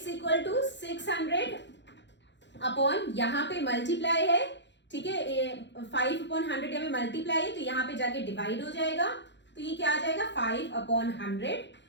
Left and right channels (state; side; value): late; right; 0.52 ms